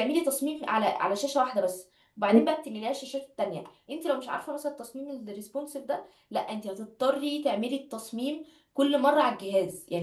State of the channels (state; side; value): identical; both; correlation 1.00